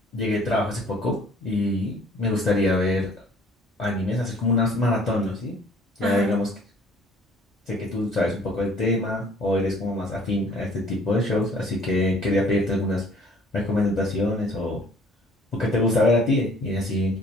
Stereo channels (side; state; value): both; normal; correlation 0.56